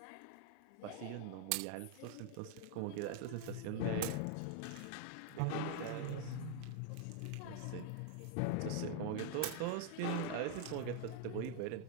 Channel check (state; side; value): different; both; correlation 0.00